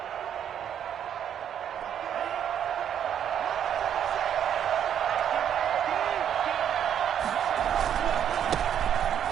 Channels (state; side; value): quieter; left; 9.3 dB